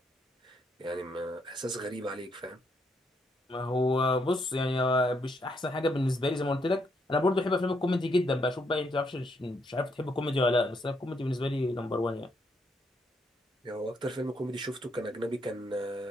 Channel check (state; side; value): normal; both; correlation 0.75